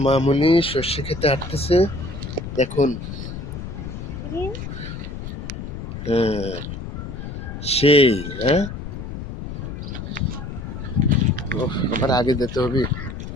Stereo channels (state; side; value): noise; left; rumble, 8 dB below the sound